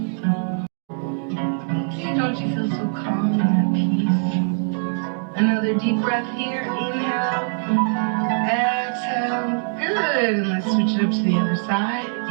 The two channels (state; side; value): silent; left; 62 dB below the other